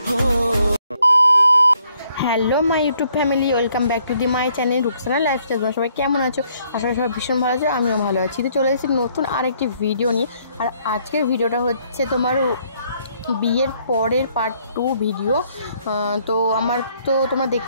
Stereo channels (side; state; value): both; inverted; correlation -0.68